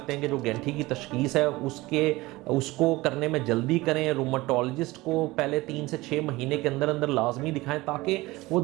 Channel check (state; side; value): quieter; left; 20.2 dB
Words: हैं कि जो गैंठी की तशख़ीस है उसको करने में जल्दी करें। रूमेटोलॉजिस्ट को पहले 3 से 6 महीने के अंदर अंदर लाजमी दिखाएं ताकि वो